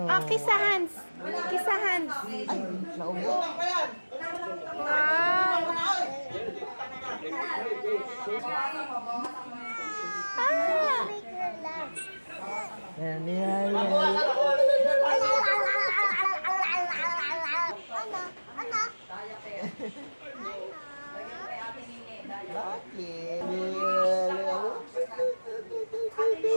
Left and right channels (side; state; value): both; inverted; correlation -1.00